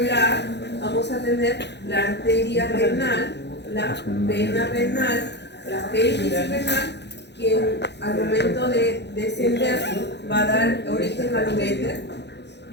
vamos a tener la arteria renal, la vena renal, la pelvis renal, que al momento de descender va a dar origen al uréter.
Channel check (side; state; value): right; late; 0.50 ms